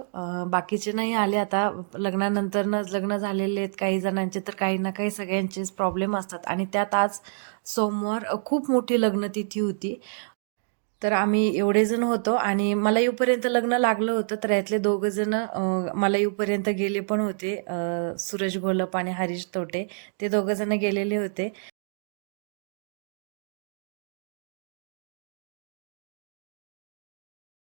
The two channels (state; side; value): silent; left; digital silence